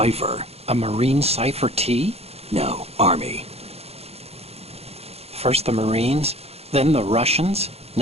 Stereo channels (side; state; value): left; late; 0.29 ms